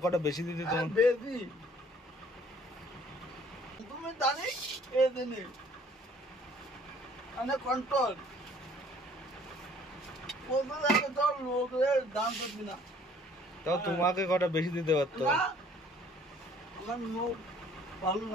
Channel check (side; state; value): both; normal; correlation 0.57